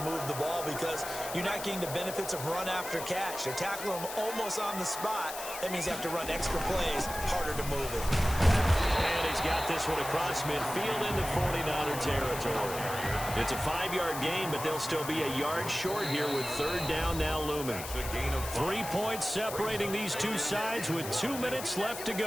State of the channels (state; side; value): noise; left; hiss, 9 dB below the sound